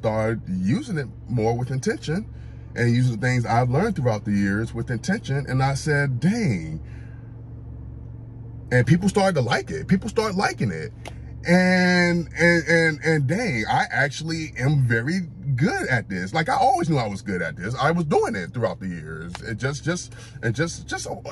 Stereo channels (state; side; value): identical; both; correlation 1.00